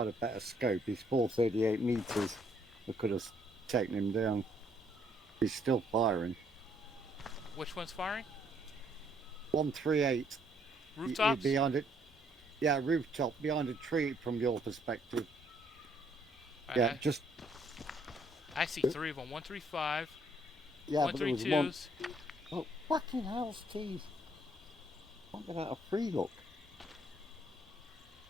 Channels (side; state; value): both; normal; correlation 0.68